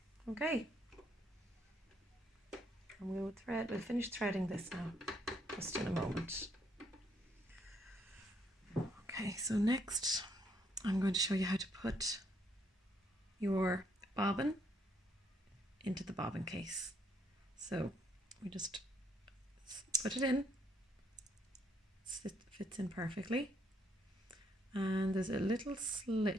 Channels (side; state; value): both; normal; correlation 0.71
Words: Okay. And we'll finish threading this now, just in a moment. Okay, so next I'm going to show you how to put your bobbin into the bobbin case. So we just put it in, it fits in perfectly, and there's a little